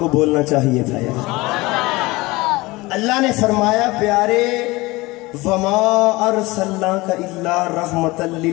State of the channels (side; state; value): right; quieter; 21.8 dB